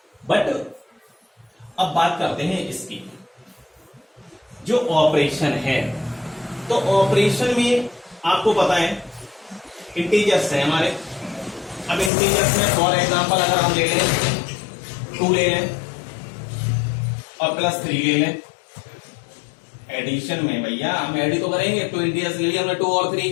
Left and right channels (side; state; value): right; drops out; at 12.1 s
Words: बट अब बात करते हैं इसकी जो ऑपरेशन है। तो ऑपरेशन में आपको पता है इंटीजर्स है हमारे। अब इंटीजर्स में फॉर एग्जांपल अगर हम ले लें 2 ले लें और +3 ले लें। एडिशन में भैया हम एडी तो करेंगे। 2 इंटीजर्स ले लिया हमने, 2 और